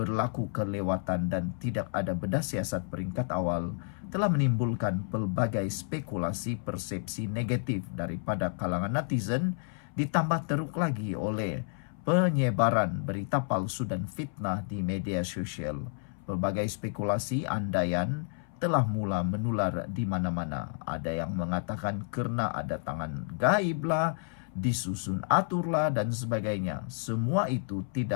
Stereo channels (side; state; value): right; silent; 57 dB below the other